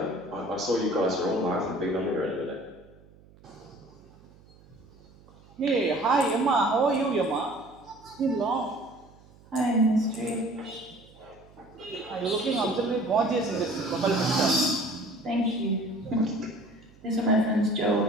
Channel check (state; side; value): noise; right; hum, 25 dB below the sound